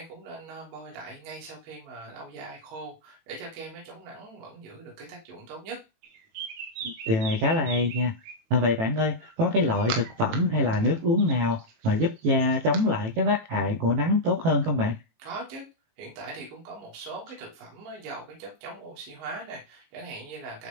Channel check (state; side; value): late; left; 18 ms